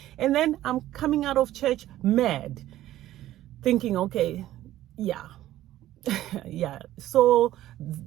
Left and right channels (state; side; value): quieter; left; 14.1 dB